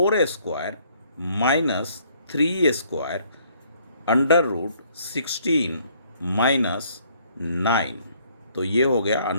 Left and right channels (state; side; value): inverted; both; correlation -0.63